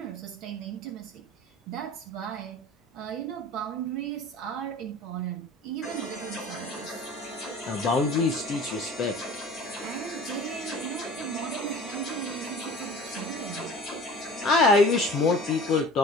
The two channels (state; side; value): normal; both; correlation 0.42